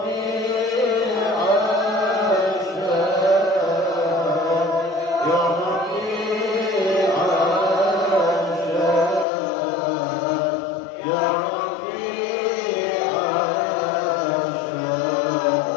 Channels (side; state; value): right; drops out; at 9.2 s